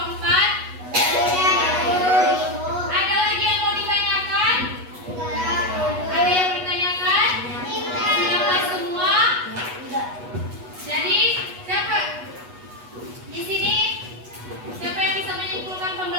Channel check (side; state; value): left; late; 8.2 ms